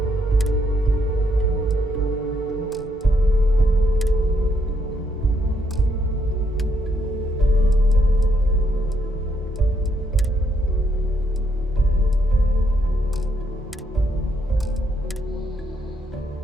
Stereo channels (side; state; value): both; normal; correlation 0.75